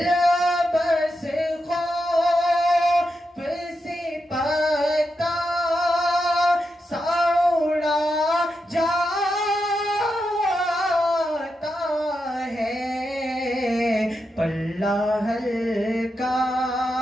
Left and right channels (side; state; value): both; normal; correlation 0.86